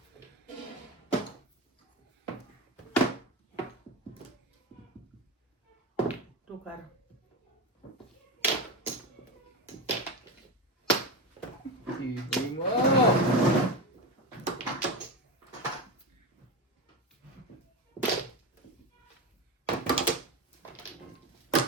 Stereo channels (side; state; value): both; normal; correlation 0.19